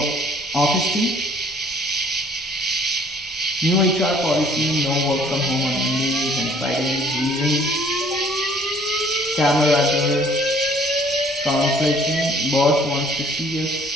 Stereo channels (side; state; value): left; noise; rumble, 25 dB below the sound